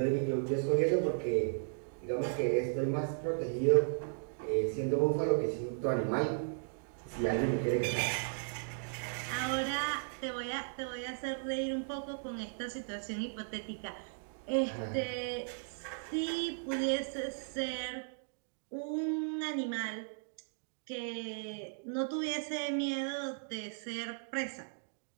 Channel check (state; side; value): silent; left; digital silence